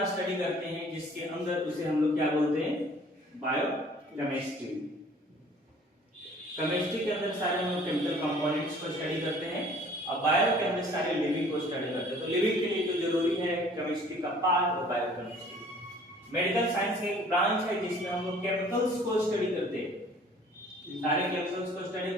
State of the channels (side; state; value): both; normal; correlation 0.53